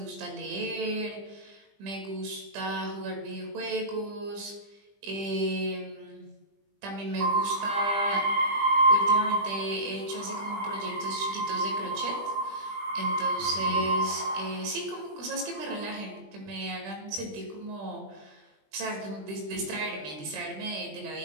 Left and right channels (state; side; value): late; left; 20 ms